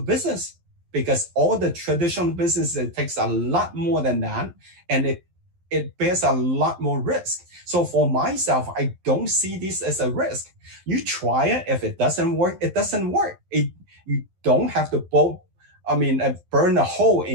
business, because all the traditional business, it takes a lot more than that, and it bears a lot more risk. So for myself, I don't see this as a risk. You try it. If it doesn't work, it doesn't work. You don't have to burn a hole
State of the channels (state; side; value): late; left; 11 ms